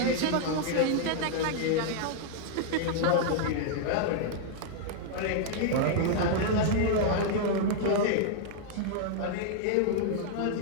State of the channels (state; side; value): different; both; correlation -0.01